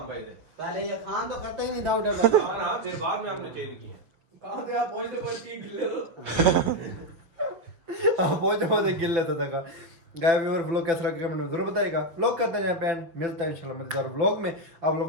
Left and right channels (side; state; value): left; late; 6.3 ms